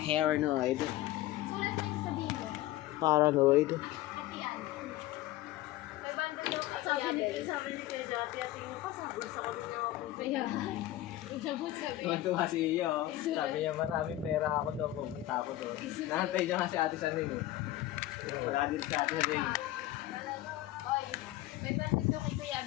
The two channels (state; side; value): quieter; right; 15.5 dB